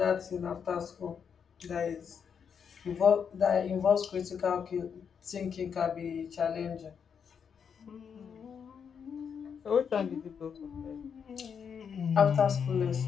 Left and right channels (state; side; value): quieter; right; 7.0 dB